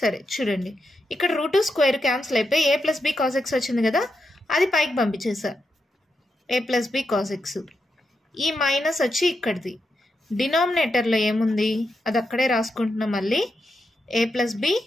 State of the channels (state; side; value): normal; both; correlation 0.85